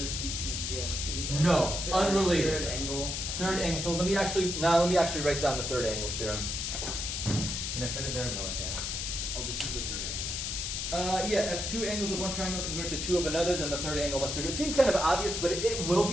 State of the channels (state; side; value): noise; left; hiss, 3 dB below the sound